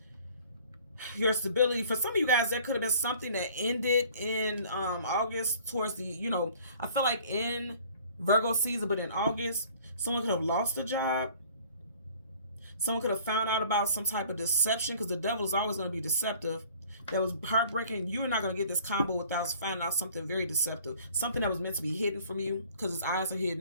stability. For some of you guys, there could have been something that ended in August towards the, you know, I feel like in Virgo season, but in August, someone could have lost a job. Someone could have found out about some type of deception because the devil is always going to be deceptive. That was heartbreaking. You're not going to get this combo without finding out something very deceptive. Something that was meant to be hidden from you because his eyes are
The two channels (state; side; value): inverted; both; correlation -0.51